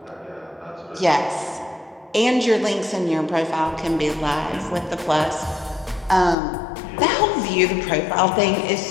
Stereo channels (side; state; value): right; drops out; at 6.4 s